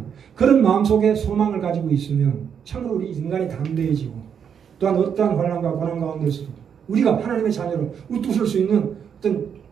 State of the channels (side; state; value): left; quieter; 7.7 dB